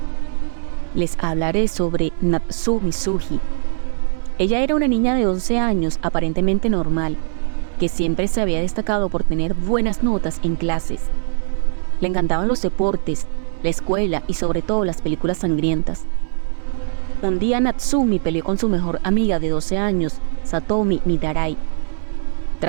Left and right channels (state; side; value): silent; left; digital silence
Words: Les hablaré sobre Natsumi Tsuji. Ella era una niña de 11 años aparentemente normal, que siempre se había destacado por tener buenas notas en clases. Le encantaban los deportes, la escuela y sobre todo las películas sangrientas. Un día Natsumi peleó con su mejor amiga de 12 años, Satomi Mitarai.